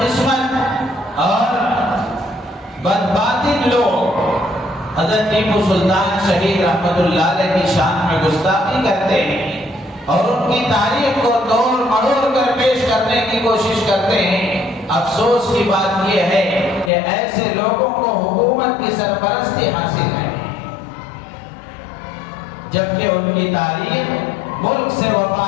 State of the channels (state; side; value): drops out; right; at 16.9 s